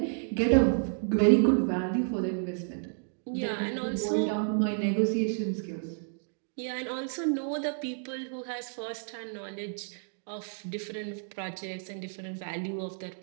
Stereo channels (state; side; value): silent; left; digital silence